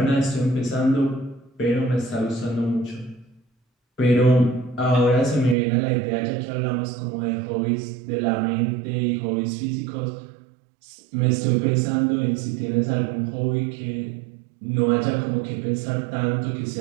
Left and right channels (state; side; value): drops out; left; at 5.6 s